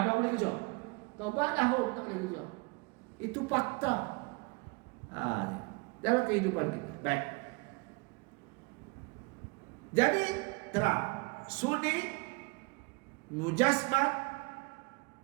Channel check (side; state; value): left; quieter; 28.9 dB